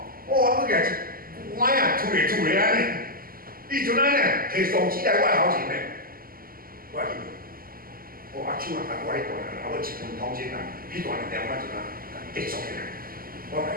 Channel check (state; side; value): late; left; 0.42 ms